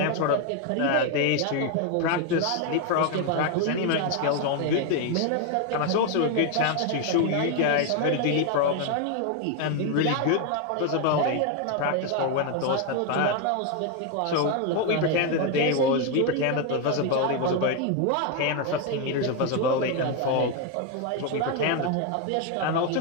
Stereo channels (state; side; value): different; both; correlation 0.01